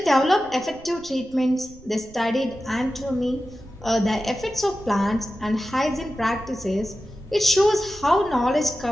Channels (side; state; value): right; noise; rumble, 22 dB below the sound